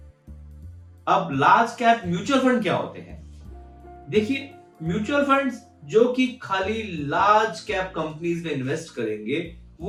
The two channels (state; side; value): identical; both; correlation 1.00